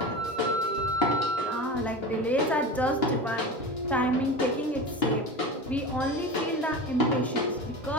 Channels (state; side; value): normal; both; correlation 0.29